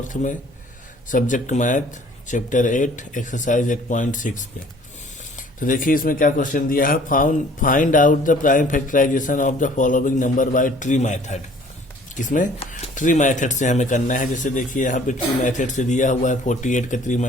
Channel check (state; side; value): normal; both; correlation 0.54